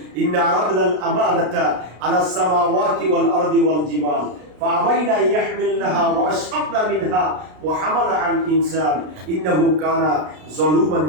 ইন্না আরাদনাল আমানাতা আলাস সামাওয়াতি ওয়াল আরদি ওয়াল জিবাল فأبين أن يحملنها وأشفقن منها وحملها الإنسان إنه كان ظلوما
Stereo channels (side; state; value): left; late; 33 ms